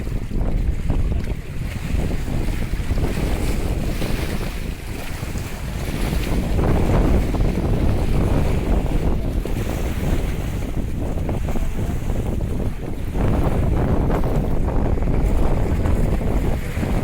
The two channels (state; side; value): identical; both; correlation 1.00